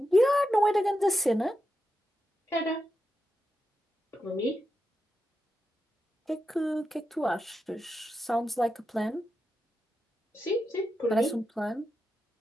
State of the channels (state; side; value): normal; both; correlation 0.88